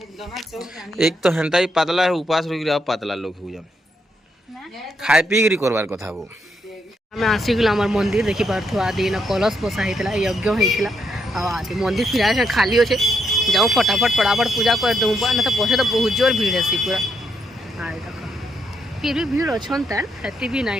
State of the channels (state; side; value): normal; both; correlation 0.77